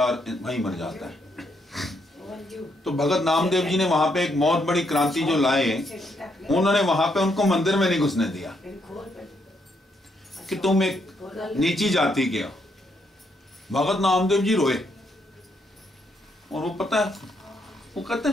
है और वहीं मर जाता है। तो भगत नामदेव जी ने वहां पे एक बहुत बड़ी क्रांति जो लाए, उन्होंने वहां पे उनको मंदिर में नहीं घुसने दिया कि तुम एक नीची जाति के हो। भगत नामदेव जी रोए और वो पता है, वो कहते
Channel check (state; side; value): normal; both; correlation 0.75